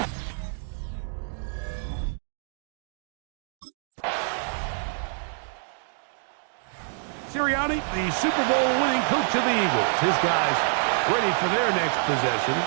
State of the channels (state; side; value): silent; left; 60 dB below the other